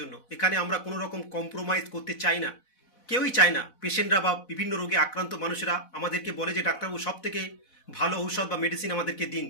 এখানে আমরা কোনো রকম কম্প্রোমাইজ করতে চাই না, কেউই চায় না। পেশেন্টরা বা বিভিন্ন রোগে আক্রান্ত মানুষেরা আমাদেরকে বলে যে ডাক্তারবাবু সব থেকে ভালো ঔষধ বা মেডিসিন আমাদেরকে দিন,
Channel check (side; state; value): right; late; 4.1 ms